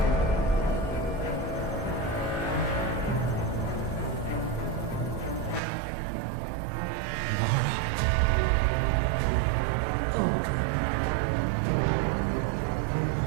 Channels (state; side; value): drops out; left; at 5.6 s